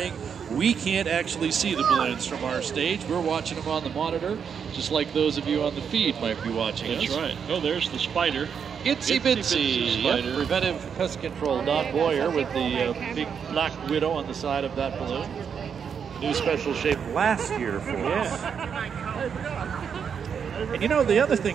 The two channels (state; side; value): quieter; left; 7.1 dB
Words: We can't actually see the balloons from our stage. We're watching them on the monitor, just like those of you on the feed might be watching us. That's right. Oh, there's the spider. Itsy Bitsy. Yep, preventive pest control. Don Boyer with the big black widow on the side of that balloon. New special shape last year for us. And you know, the other